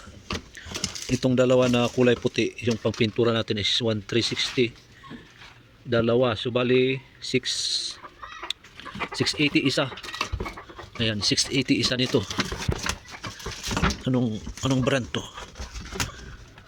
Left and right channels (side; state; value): both; identical; correlation 1.00